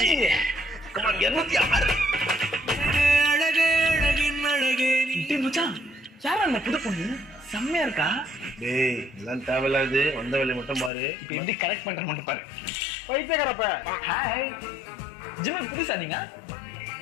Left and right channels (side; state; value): right; drops out; at 10.9 s